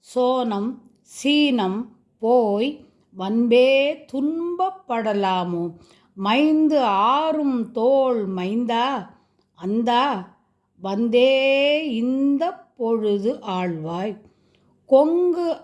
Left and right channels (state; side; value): identical; both; correlation 1.00